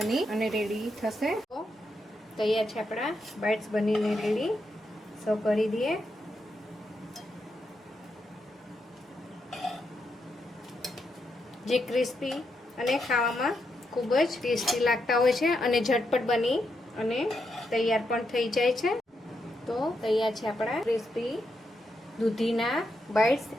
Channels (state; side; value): normal; both; correlation 0.82